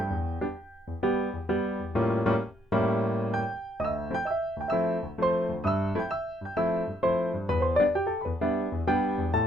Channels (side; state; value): both; normal; correlation 0.73